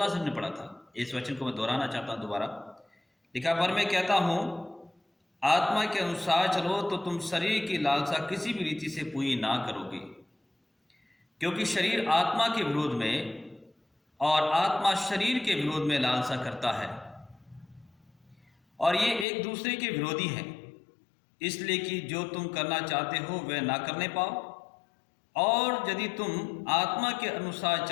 से हमने पढ़ा था। इस वचन को मैं दोहराना चाहता हूँ दोबारा। लिखा, पर मैं कहता हूँ आत्मा के अनुसार चलो तो तुम शरीर की लालसा किसी भी रीति से पूरी ना करोगे, क्योंकि शरीर आत्मा के विरोध में और आत्मा शरीर के विरोध में लालसा करता है और ये एक दूसरे के विरोधी हैं, इसलिए कि जो तुम करना चाहते हो वह ना करने पाओ। और यदि तुम आत्मा के अनुसार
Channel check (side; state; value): right; drops out; at 19.2 s